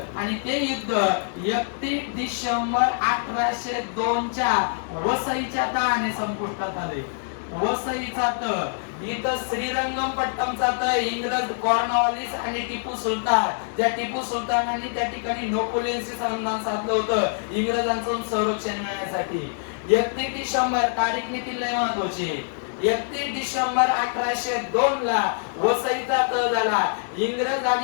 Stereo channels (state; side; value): silent; right; digital silence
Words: आणि ते युद्ध 31 डिसेंबर 1802 च्या वसईच्या तहाने संपुष्टात आले. वसईचा तह इथं श्रीरंगपट्टमचा तह इंग्रज कॉर्नवालिस आणि टिपू सुलतान, त्या टिपू सुलतानांनी त्या ठिकाणी नेपोलियनशी संधान साधलं होतं इंग्रजांचं संरक्षण मिळण्यासाठी. 31 डिसेंबर तारीख देखील लय महत्त्वाची. 31 डिसेंबर 1802 ला वसईचा तह झाला. इंग्रज